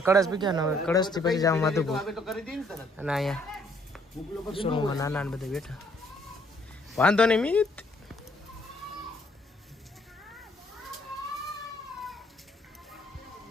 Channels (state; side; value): normal; both; correlation 0.66